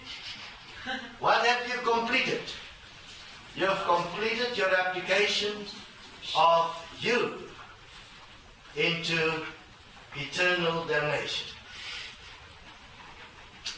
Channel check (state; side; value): identical; both; correlation 1.00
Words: What have you completed? You have completed your application of you into eternal damnation.